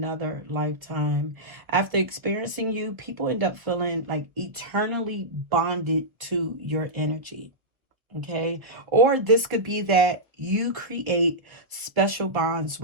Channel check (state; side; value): late; left; 1.3 ms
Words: lifetime. After experiencing you, people end up feeling like eternally bonded to your energy. Okay. Or this could be that you create special bonds